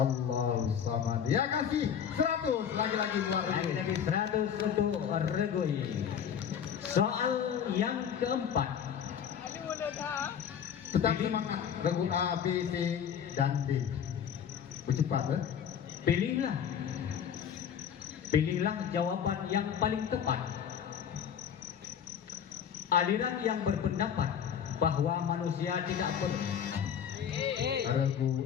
samad. Ya, kasih 100 lagi-lagi buat regu. Lagi-lagi 100 untuk regu ini. Soal yang keempat, Tetap semangat. Regu A, B, C, dan D. Bercepat, Pilihlah jawaban yang paling tepat. Aliran yang berpendapat bahwa manusia tidak perlu. Regu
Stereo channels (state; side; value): quieter; right; 8.3 dB